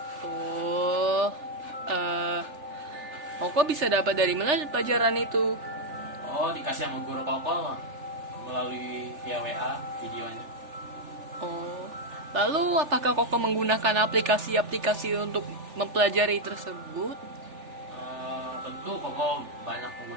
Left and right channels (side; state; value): left; late; 3.4 ms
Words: Oh, eh, kok bisa dapat dari mana pelajaran itu? Oh, dikasih sama guru Koko melalui via WA videonya. Oh, lalu apakah kok menggunakan aplikasi-aplikasi untuk mempelajari tersebut? Tentu Koko banyak